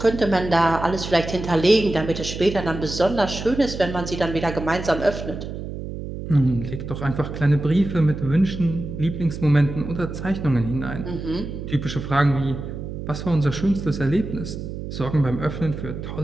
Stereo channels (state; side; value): noise; right; hum, 8 dB below the sound